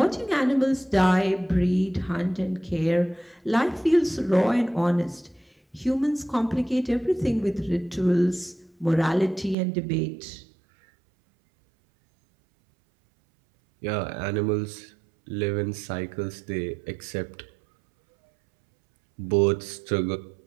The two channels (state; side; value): drops out; left; at 9.6 s